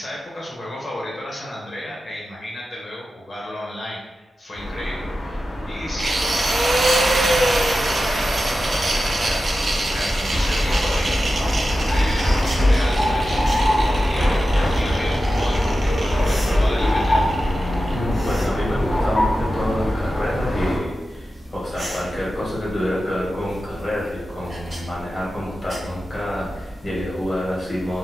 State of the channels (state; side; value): normal; both; correlation 0.92